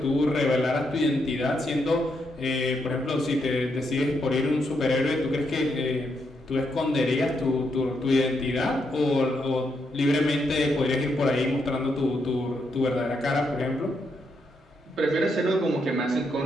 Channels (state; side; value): normal; both; correlation 0.79